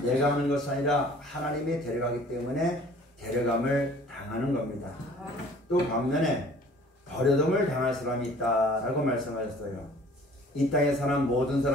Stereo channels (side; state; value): both; normal; correlation 0.51